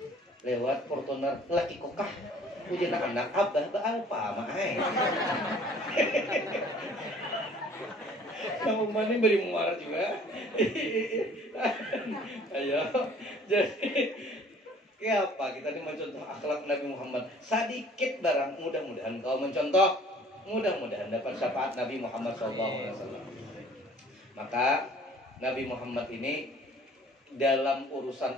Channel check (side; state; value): both; normal; correlation 0.53